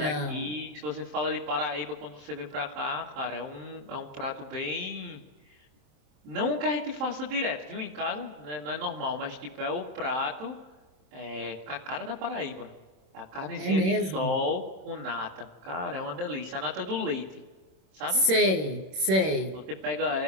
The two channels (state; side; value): late; left; 27 ms